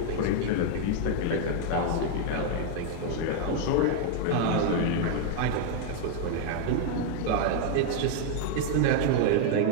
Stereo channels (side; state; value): both; different; correlation 0.00